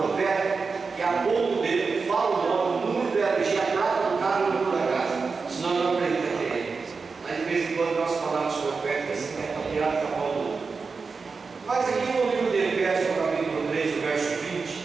que a ponto dele fala o nome, o número da LG, a data do carro e o número da casa. Senão não acredita nele. Mas de vez em quando umas palavras proféticas assim, que é para tirar da mão do outro. Mas aqui no livro de Efésios, no capítulo 3, o verso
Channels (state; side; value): quieter; left; 4.7 dB